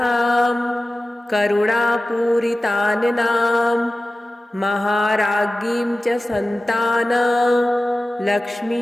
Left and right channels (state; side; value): normal; both; correlation 0.95